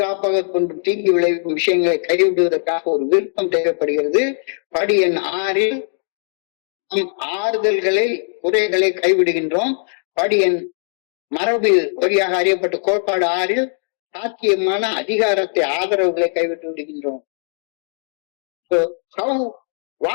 கொண்டும் தீங்கு விளைவிக்கும் விஷயங்களை கைவிடுவதற்காக ஒரு விருப்பம் தேவைப்படுகிறது. படி எண் 6 நம் ஆறுதல்களை, குறைகளை கைவிடுகின்றோம். படி எண் மரபு வழியாக அறியப்பட்ட கோட்பாடு 6 சாத்தியமான அதிகாரத்தை, ஆதரவுகளை கைவிட்டு விடுகின்றோம். So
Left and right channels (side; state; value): right; silent; digital silence